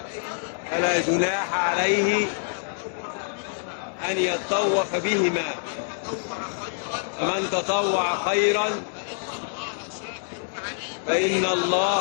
فلا جناح عليه أن يطوف بهما، ومن تطوع خيرا فإن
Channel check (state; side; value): silent; right; digital silence